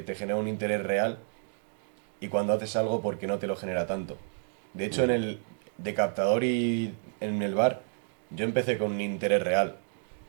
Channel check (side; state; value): left; silent; digital silence